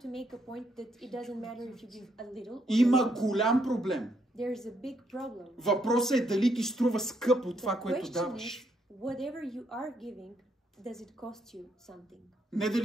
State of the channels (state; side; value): normal; both; correlation 0.74